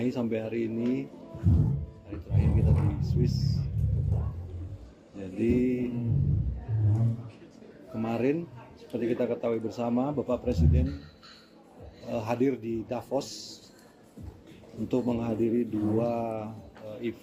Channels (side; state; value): both; identical; correlation 1.00